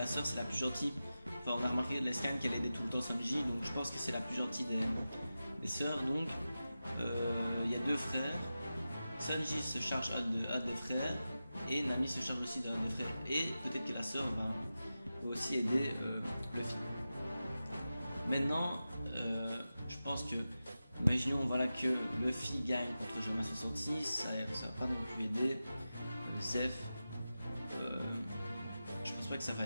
sœur c'est la plus gentille. Enfin, on a remarqué de la scan qu'elle aidait tout le temps Sanji, donc je pense que c'est la plus gentille des sœurs. Donc il y a 2 frères, Sanji se charge un des frères et Nami se charge aussi d'un des frères, et peut-être que la sœur va aussi aider Luffy. Maintenant je pense que, imaginons voilà, que Luffy gagne contre Germa 66, ça va pas non plus aider Zeff. Je pense pas que ça va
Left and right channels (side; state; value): both; inverted; correlation -0.93